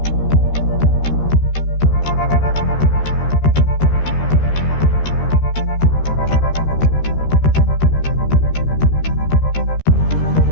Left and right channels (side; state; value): right; late; 13 ms